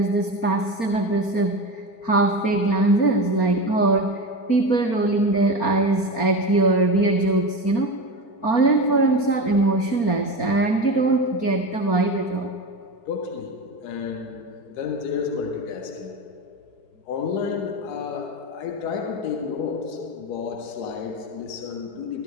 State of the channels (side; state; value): right; late; 4.3 ms